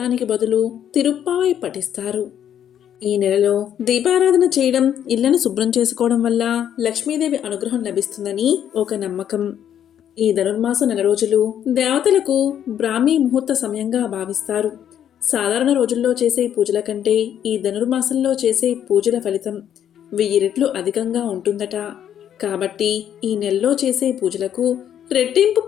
బదులు తిరుప్పావై పఠిస్తారు. ఈ నెలలో దీపారాధన చేయడం, ఇళ్లను శుభ్రం చేసుకోవడం వల్ల లక్ష్మీదేవి అనుగ్రహం లభిస్తుందని ఒక నమ్మకం. ఈ ధనుర్మాస నెల రోజులు దేవతలకు బ్రాహ్మీ ముహూర్త సమయంగా భావిస్తారు. సాధారణ రోజుల్లో చేసే పూజల కంటే ఈ ధనుర్మాసంలో చేసే పూజల ఫలితం 1000 రెట్లు అధికంగా ఉంటుందట. కాబట్టి ఈ నెలలో చేసే పూజలకు రెట్టింపు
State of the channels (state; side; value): quieter; right; 9.8 dB